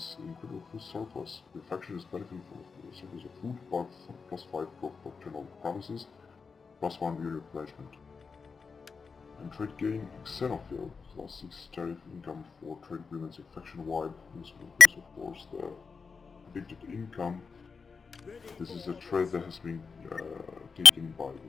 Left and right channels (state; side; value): quieter; right; 5.1 dB